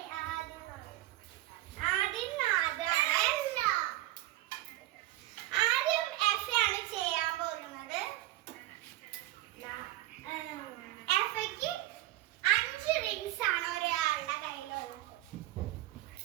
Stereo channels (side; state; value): left; quieter; 16.0 dB